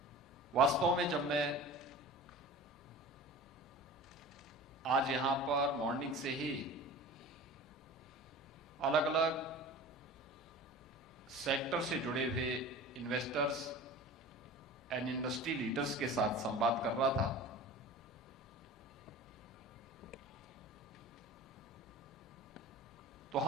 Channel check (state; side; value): normal; both; correlation 0.38